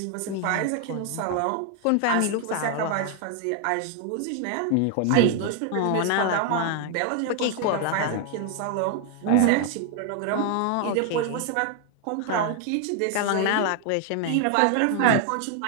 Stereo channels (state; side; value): different; both; correlation 0.00